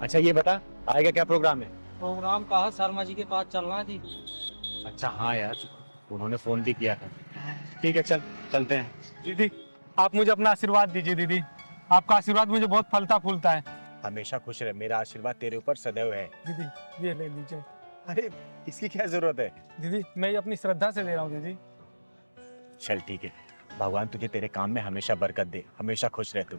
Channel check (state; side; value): inverted; both; correlation -1.00